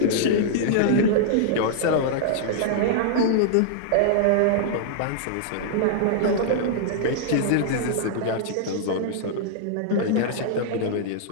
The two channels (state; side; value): different; both; correlation -0.01